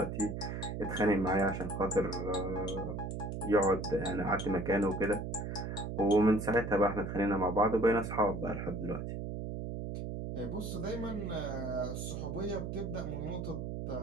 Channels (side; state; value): right; noise; hum, 5 dB below the sound